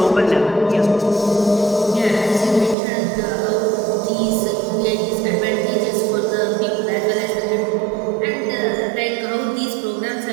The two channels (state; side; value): drops out; left; at 2.8 s